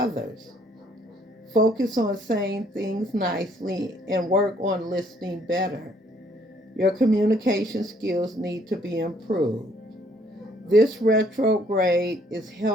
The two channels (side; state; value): both; normal; correlation 0.64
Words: Focus on saying things nicely and work on listening better. Your communication skills need to be improved. This retrograde is